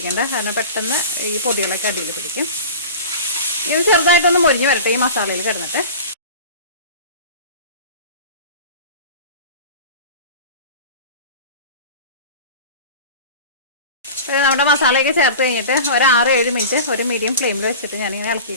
കാരണം പെട്ടെന്ന് ഈ പൊടികളൊക്കെ അടിയിൽ പിടിക്കും. ഇത് ചെറുതായിട്ടൊന്ന് മൊരിഞ്ഞ് വരട്ടെ ഈ മസാലയിൽ കിടന്നിട്ട്. നമ്മുടെ മസാലയൊക്കെ ചേർത്ത് കഴിഞ്ഞിട്ട് ഒരു 6-7 മിനിറ്റ് ഒരു മീഡിയം ഫ്ലെയിമിൽ വെച്ചിട്ട് ഞാനിങ്ങനെ ഇളക്കി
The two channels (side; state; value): both; inverted; correlation -0.34